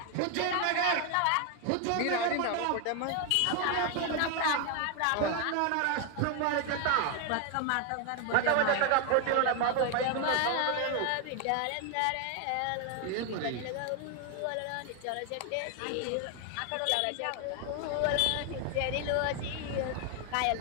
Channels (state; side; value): different; both; correlation 0.01